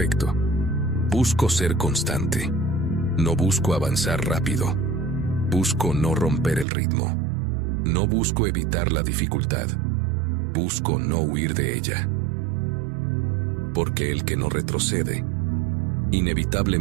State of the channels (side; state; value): left; drops out; at 6.7 s